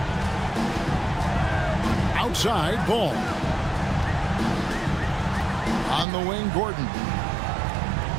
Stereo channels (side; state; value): left; drops out; at 6.1 s